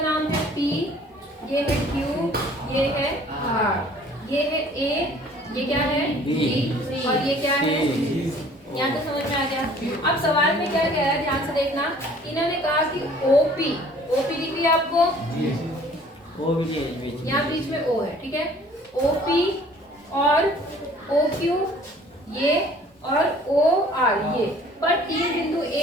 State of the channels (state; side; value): normal; both; correlation 0.53